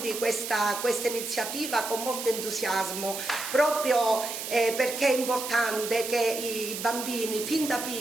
questa iniziativa con molto entusiasmo, proprio perché è importante che i bambini fin da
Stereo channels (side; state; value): right; noise; hiss, 6 dB below the sound